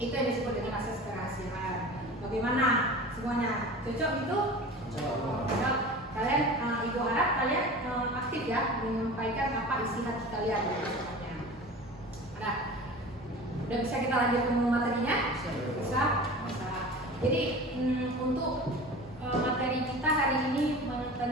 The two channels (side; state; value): both; normal; correlation 0.36